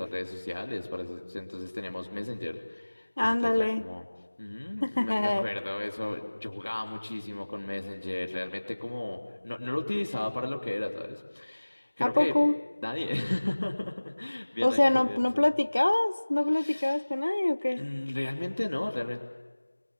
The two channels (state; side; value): inverted; both; correlation -1.00